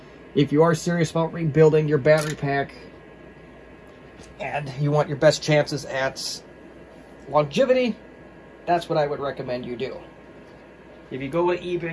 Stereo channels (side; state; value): both; identical; correlation 1.00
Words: if you are serious about rebuilding your battery pack and you want your best chances at longevity, that's what I would recommend you do. If you go to